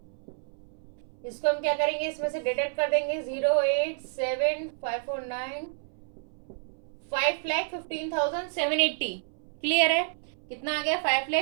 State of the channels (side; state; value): left; silent; 58 dB below the other